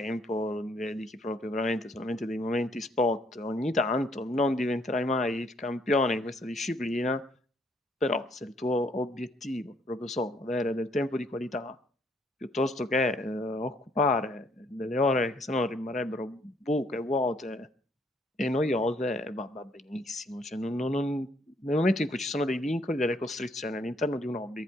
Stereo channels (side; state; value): both; normal; correlation 0.67